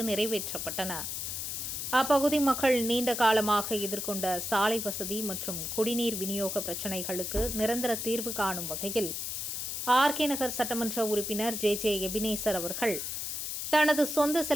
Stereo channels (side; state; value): left; noise; hiss, 4 dB below the sound